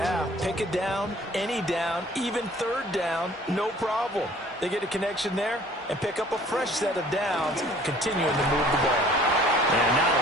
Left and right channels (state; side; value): normal; both; correlation 0.53